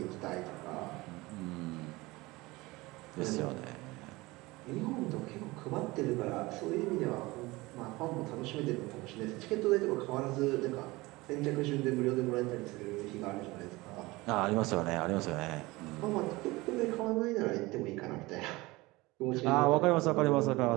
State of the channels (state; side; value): quieter; left; 21.5 dB